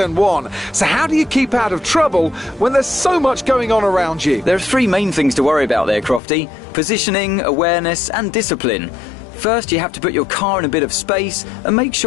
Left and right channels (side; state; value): right; drops out; at 6.2 s